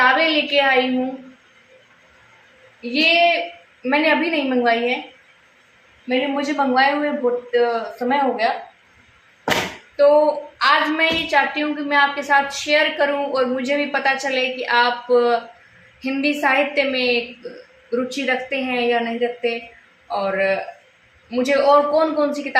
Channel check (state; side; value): identical; both; correlation 1.00